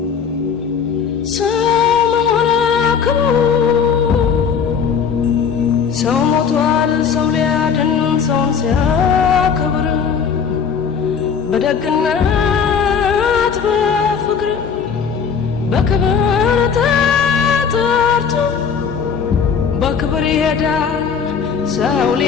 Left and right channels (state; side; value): quieter; right; 6.7 dB